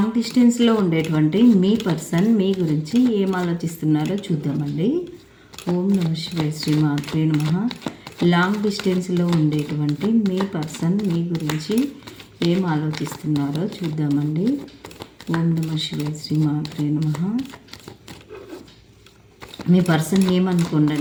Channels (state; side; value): identical; both; correlation 1.00